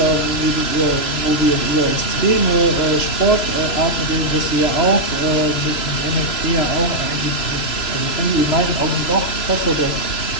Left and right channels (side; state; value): right; late; 3.0 ms